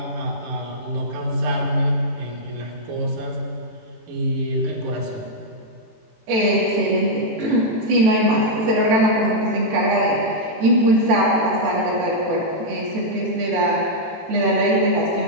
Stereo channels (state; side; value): late; left; 18 ms